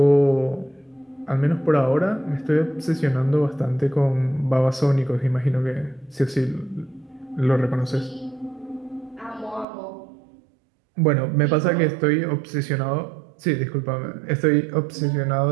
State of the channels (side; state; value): left; drops out; at 9.7 s